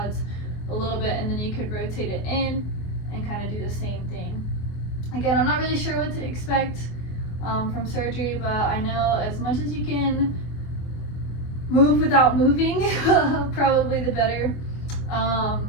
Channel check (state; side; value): late; right; 24 ms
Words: a little bit, and then you could rotate it in and kind of do the same thing. Again, I'm not really sure what to expect from surgery, but I know as much as you can move without moving, probably the better.